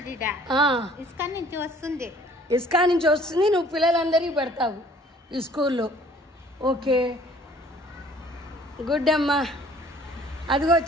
ఇస్కా నుంచి వస్తుంది నువ్వు పిల్లలందరికీ పెడతావు ఈ స్కూల్లో. ఓకే, గుడ్ అమ్మా. అదిగో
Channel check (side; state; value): both; normal; correlation 0.55